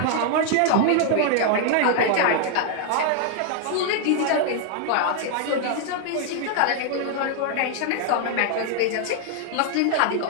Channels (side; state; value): both; different; correlation 0.00